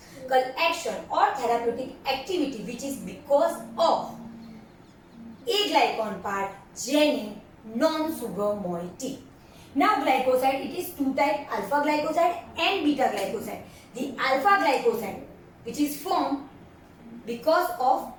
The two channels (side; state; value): both; identical; correlation 1.00